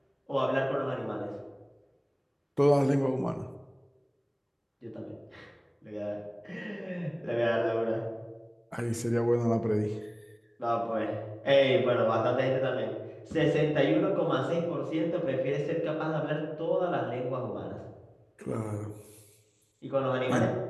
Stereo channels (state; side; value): identical; both; correlation 1.00